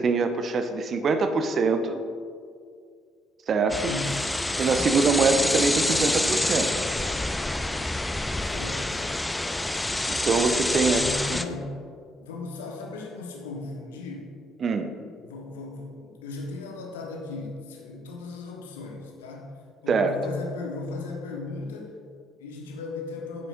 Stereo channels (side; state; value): both; normal; correlation 0.77